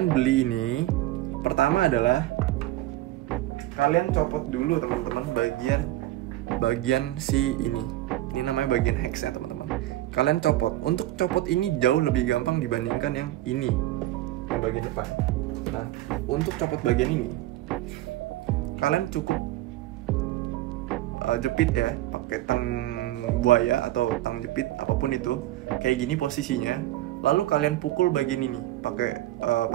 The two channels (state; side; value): quieter; left; 15.5 dB